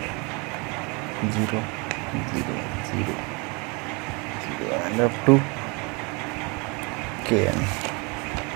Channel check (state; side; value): quieter; left; 30.1 dB